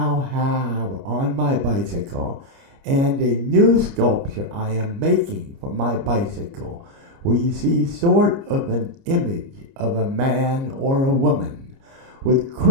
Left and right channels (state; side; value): late; left; 30 ms